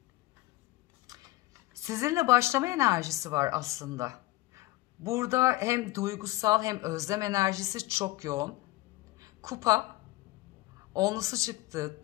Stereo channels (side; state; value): right; quieter; 18.8 dB